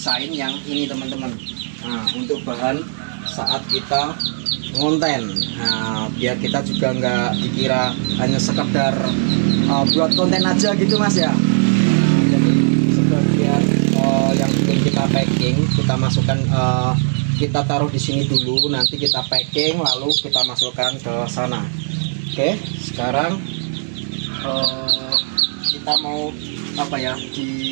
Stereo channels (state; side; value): silent; left; 67 dB below the other